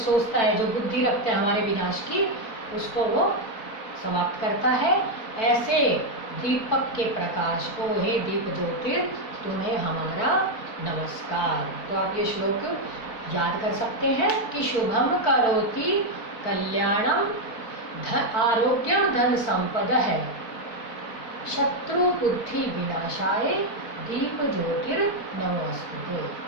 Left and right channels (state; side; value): late; right; 4.5 ms